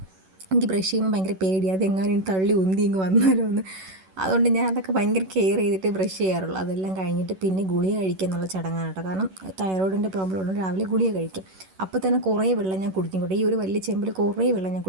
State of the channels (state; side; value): late; left; 11 ms